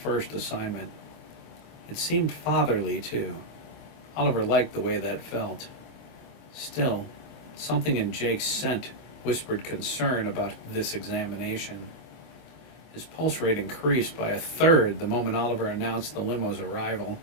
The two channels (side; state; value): right; late; 24 ms